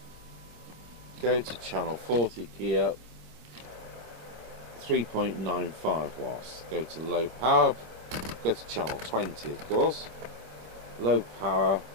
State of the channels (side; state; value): left; late; 26 ms